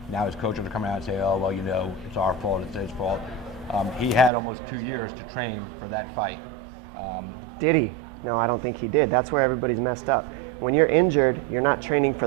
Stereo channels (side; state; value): left; drops out; at 4.3 s